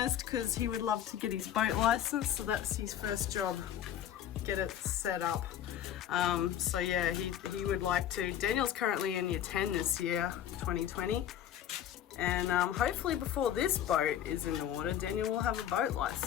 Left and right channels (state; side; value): quieter; right; 10.5 dB